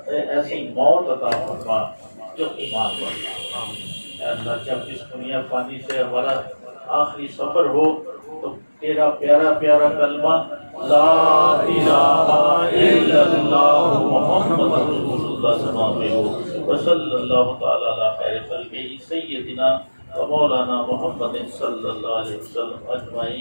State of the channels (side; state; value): both; inverted; correlation -1.00